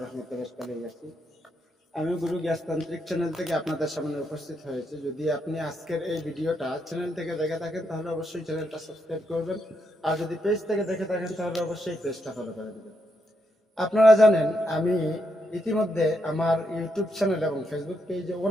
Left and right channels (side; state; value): both; normal; correlation 0.80